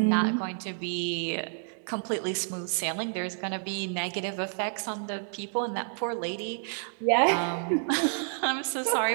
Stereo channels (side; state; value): left; silent; 58 dB below the other